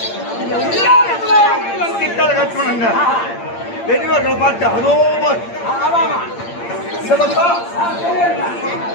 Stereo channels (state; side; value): late; right; 8.7 ms